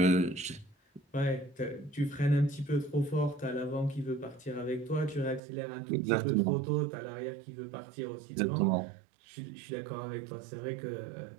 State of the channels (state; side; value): drops out; left; at 5.4 s